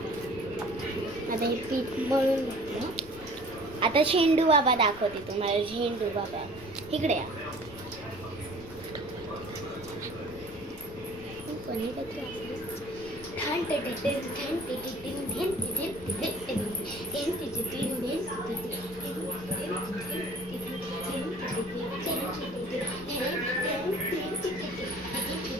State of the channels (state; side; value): noise; left; rumble, 18 dB below the sound